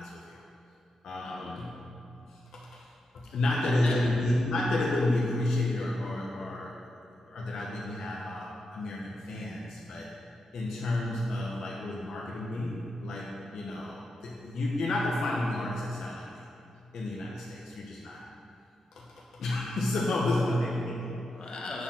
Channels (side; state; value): both; normal; correlation 0.86